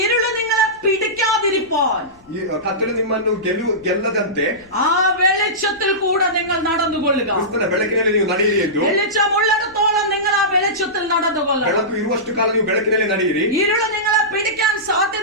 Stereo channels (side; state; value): left; noise; rumble, 28 dB below the sound